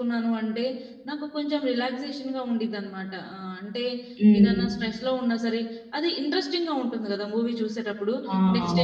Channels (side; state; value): both; identical; correlation 1.00